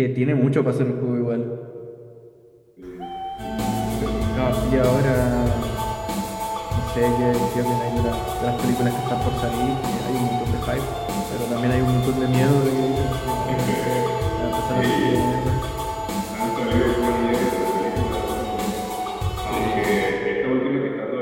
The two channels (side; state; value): both; identical; correlation 1.00